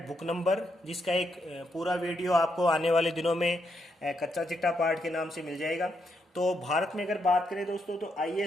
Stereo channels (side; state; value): both; normal; correlation 0.79